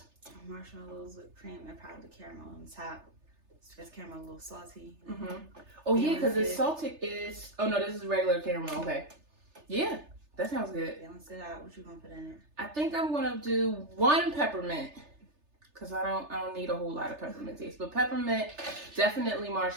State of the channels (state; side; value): late; left; 3.3 ms